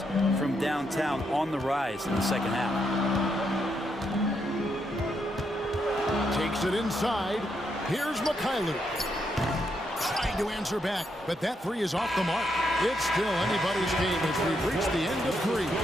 from downtown on the rise in the second half. Takes it inside. Here's Mikhailu. Trying to answer back, but that three is off the mark. It's still anybody's game as we've reached the end of three.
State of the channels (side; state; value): both; normal; correlation 0.79